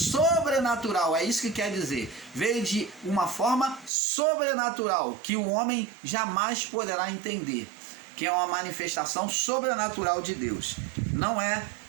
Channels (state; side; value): drops out; left; at 3.9 s